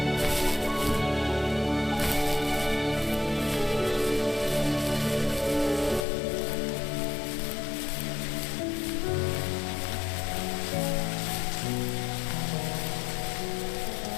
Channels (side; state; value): right; drops out; at 6.1 s